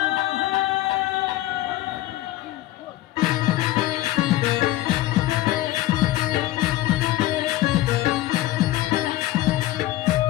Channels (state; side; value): quieter; right; 16.2 dB